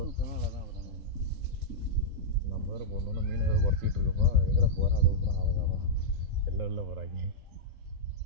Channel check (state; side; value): late; left; 3.9 ms